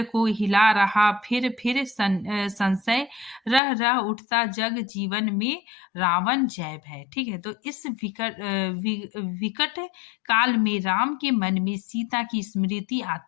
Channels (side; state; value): right; drops out; at 3.6 s